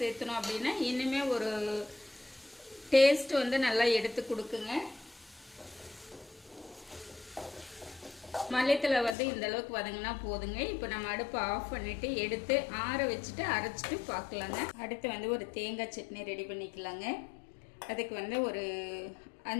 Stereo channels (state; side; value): drops out; right; at 9.2 s